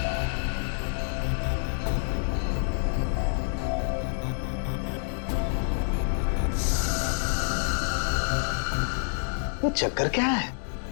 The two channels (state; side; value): silent; right; digital silence